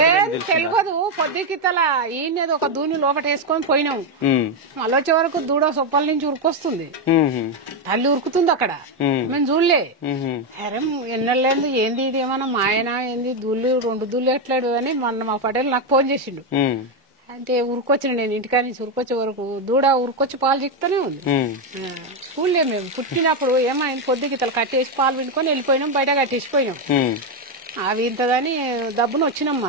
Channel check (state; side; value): normal; both; correlation 0.05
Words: తెలియదు పొద్దుకితల ఈయనది ఒక దూని లోపల వేసుకొని పోయినాం మళ్ళీ వచ్చే వరకు దూడ సొప్పల నుంచి ఉరుకొస్తుంది తల్లి ఉరుకుతుంది అక్కడ మేము చూడలే. అరే ఎన్నెళ్ళేంది ఏంది ఇది ఏమన్నా మాయనా ఏంది దూళ్ళు 2 దూళ్ళు ఎట్లాడు అని మొన్న మా పటేల్ నాకు ఫోన్ చేసిండు. అంటే ఉరుకొచ్చిన నేను ఇంటికాడ నుంచి ఉరుకొచ్చే వరకు దూడ ఉరుకొచ్చి పాలు చిక్కుతూనే ఉంది. చూడలే మేము పుట్టినప్పుడు ఏమైంది పొద్దుకితలు కట్టేసి పాలు పిండుకొని వెళ్ళిపోయినాం బయట కట్టేసిపోయినాం. అవి ఇంతదని దబ్బును వచ్చినాం